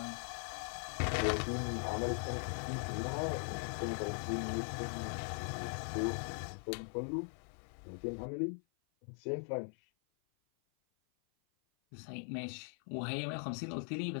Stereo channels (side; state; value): right; silent; 51 dB below the other